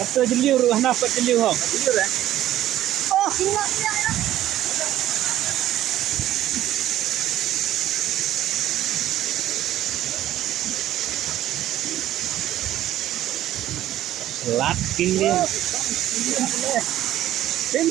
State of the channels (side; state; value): left; quieter; 13.3 dB